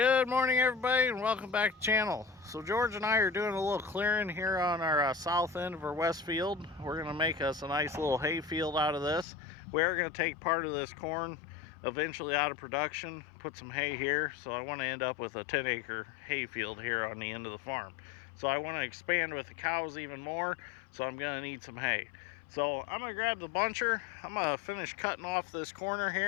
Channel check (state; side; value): drops out; right; at 9.2 s